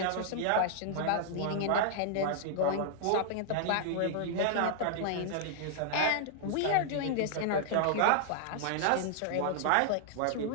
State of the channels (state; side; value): different; both; correlation -0.01